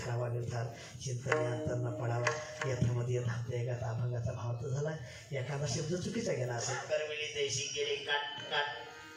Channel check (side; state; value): both; identical; correlation 1.00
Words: निर्धार चिंतने अंतर न पडावा यथामध्ये धावते एका अभंगाचा भाव तर झाला एखादा शब्द चुकीचा गेला असेल करविली देशी गेली काट काट